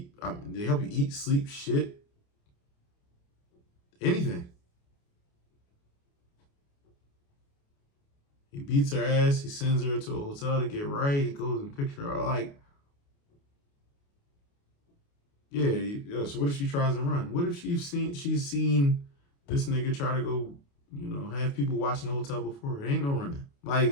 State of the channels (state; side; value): late; right; 29 ms